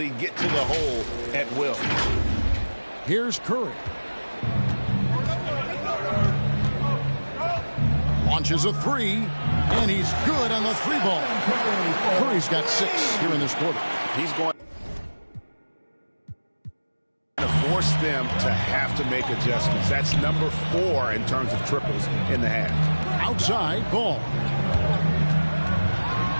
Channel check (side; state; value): both; inverted; correlation -1.00